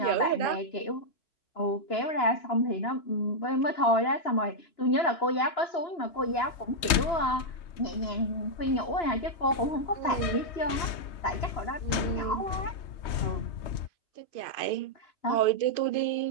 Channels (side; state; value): right; late; 3.2 ms